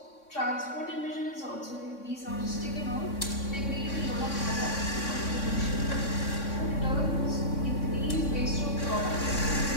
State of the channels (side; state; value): right; late; 3.6 ms